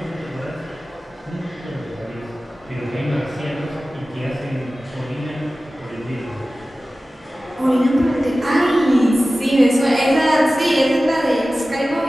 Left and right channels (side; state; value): both; normal; correlation 0.96